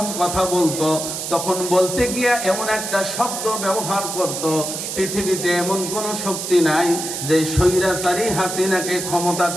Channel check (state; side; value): noise; right; hiss, 5 dB below the sound